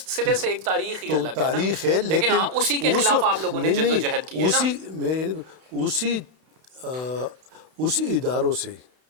سے ایک تاریخ ہی تو الگ ہے نا۔ تاریخ ہے، لیکن ہاں اسی کے خلاف آپ لوگوں نے جد و جہد کی ہے نا۔ اسی اداروں سے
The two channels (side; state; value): left; late; 32 ms